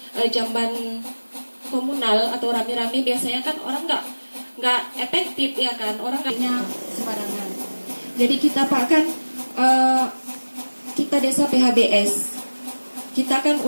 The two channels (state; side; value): inverted; both; correlation -1.00